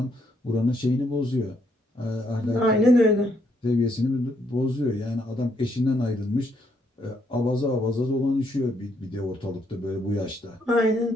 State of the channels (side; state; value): both; normal; correlation 0.74